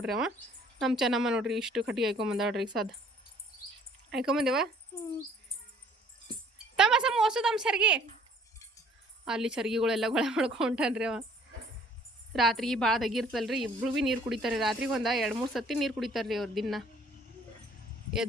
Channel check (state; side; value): normal; both; correlation 0.58